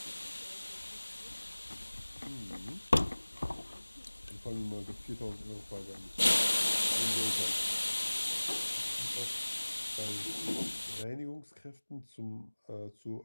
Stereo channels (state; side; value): inverted; both; correlation -1.00